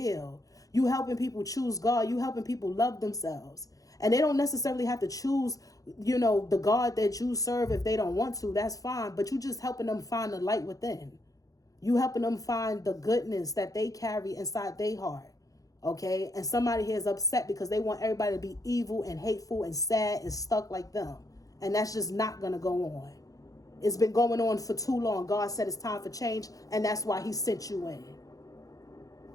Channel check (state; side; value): late; right; 0.17 ms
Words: You helping people choose God. You helping people love themselves. And they don't necessarily have to choose, the God that you serve if they don't want to. That's fine. But you just helping them find the light within. You helping them find the goodness that they carry inside their heart. Okay? And somebody here is upset because they want everybody to be evil and hateful and sad and stuck like them. And that's just not going to go on. It's been going on for too long. God said it's time for change, and that's why he sent you in.